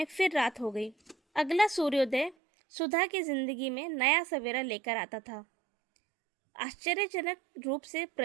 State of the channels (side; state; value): left; drops out; at 2.4 s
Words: फिर रात हो गई। अगला सूर्योदय सुधा की जिंदगी में नया सवेरा लेकर आता था। आश्चर्यजनक रूप से